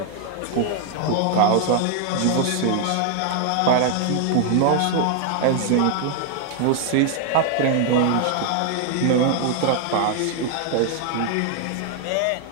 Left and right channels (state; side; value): different; both; correlation 0.00